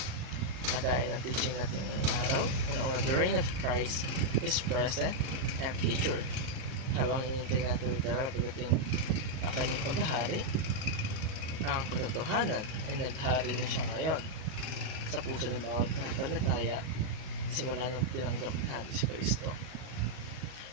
Kagaya ng teaching natin ngayong araw, una-una, the reign of Christ is present and future. Habang hinihintay natin literal pagdating ang kanyang paghahari, ang katotohanan ay naghari na siya ngayon sa puso ng bawat pananampalataya simula nang tinanggap natin si Kristo.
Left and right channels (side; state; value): left; late; 38 ms